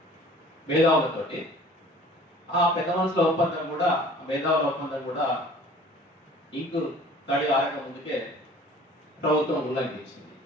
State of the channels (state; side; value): normal; both; correlation 0.48